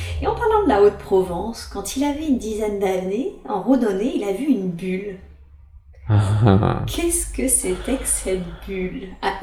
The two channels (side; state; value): both; identical; correlation 1.00